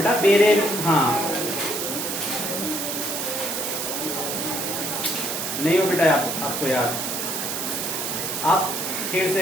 बेरे, हाँ नहीं हो बेटा आपको याद। आप फिर से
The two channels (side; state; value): right; noise; hiss, 3 dB below the sound